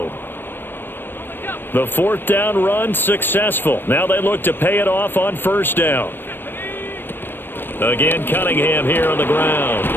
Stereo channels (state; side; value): late; right; 0.097 ms